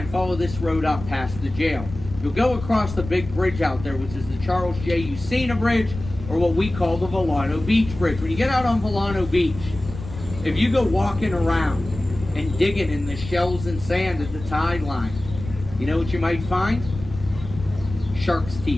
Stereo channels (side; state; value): left; noise; rumble, 11 dB below the sound